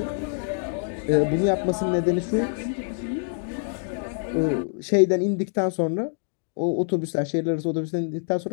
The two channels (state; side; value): silent; right; 61 dB below the other